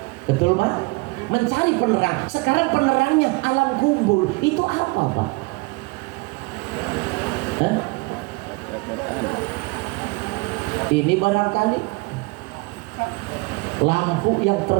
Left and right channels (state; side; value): quieter; left; 26.6 dB